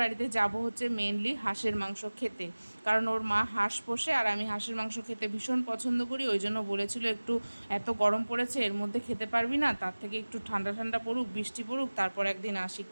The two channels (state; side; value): inverted; both; correlation -1.00